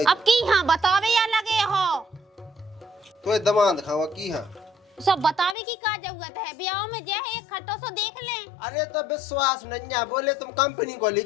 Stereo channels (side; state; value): right; drops out; at 5.6 s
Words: अब की हाँ बतावे या लगे हो तो दमाद खावा की हाँ सब बतावे की का जरूरत है ब्याह में जे है एक खट्टो सो देख ले। अरे तो विश्वास नहीं बोले तुम कंपनी को